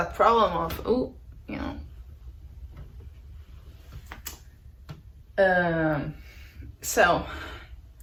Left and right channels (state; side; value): identical; both; correlation 1.00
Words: problem of, oh, you know. So,